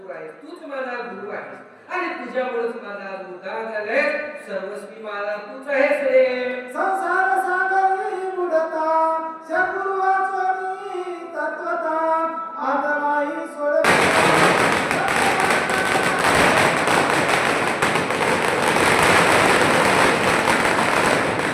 आहे, तूच माझा गुरु आहे, आणि तुझ्यामुळेच माझा उद्धार झालाय. सर्वस्वी मला तूच आहेस रे. संसार सागरी बुडता, सद्गुरु वाचोनी तत्वता, आदमाई सोड.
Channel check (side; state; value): both; identical; correlation 1.00